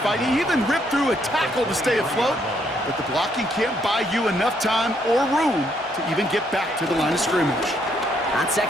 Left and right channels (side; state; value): both; normal; correlation 0.72